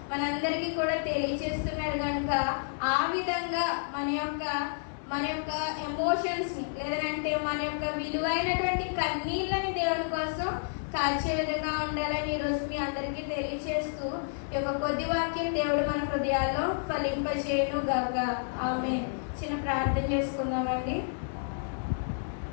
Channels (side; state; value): right; silent; 58 dB below the other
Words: మనందరికీ కూడా తెలియజేస్తున్నాడు. కనుక ఆ విధంగా మన యొక్క ఎమోషన్స్ ని, లేదంటే మన యొక్క విలువైనటువంటి కన్నీళ్ళని దేవుని కోసం కాల్చే విధంగా ఉండాలని ఈరోజు మీ అందరికీ తెలియజేస్తూ ఈ యొక్క కొద్ది వాక్యం దేవుడు మన హృదయాల్లో ఫలింపజేయును గాక. ఆమేన్. చిన్న ప్రార్థన చేసుకుందామండి.